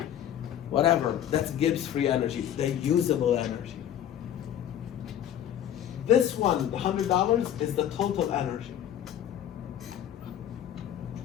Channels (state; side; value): quieter; right; 10.5 dB